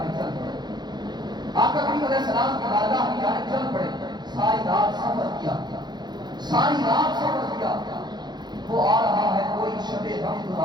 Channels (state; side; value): late; left; 0.21 ms